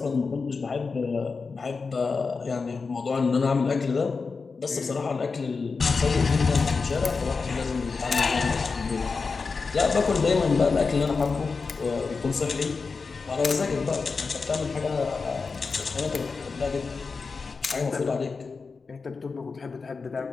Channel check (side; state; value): right; quieter; 4.6 dB